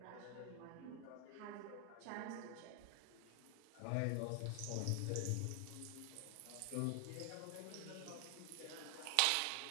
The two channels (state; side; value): different; both; correlation 0.00